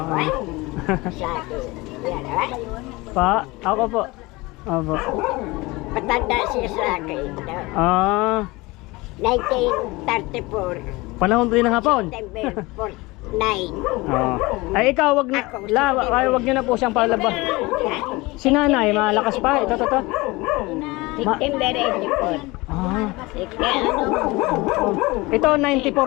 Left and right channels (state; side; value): quieter; right; 22.6 dB